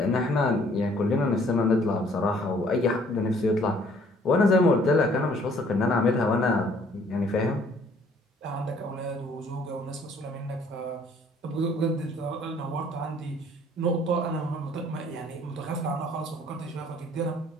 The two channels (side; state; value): both; normal; correlation 0.59